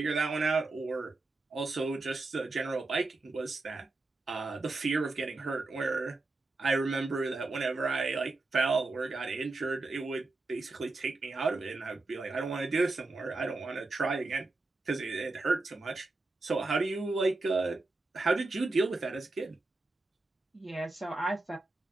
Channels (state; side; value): quieter; left; 3.3 dB